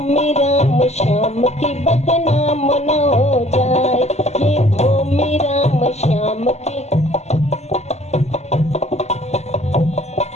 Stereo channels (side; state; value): right; late; 0.32 ms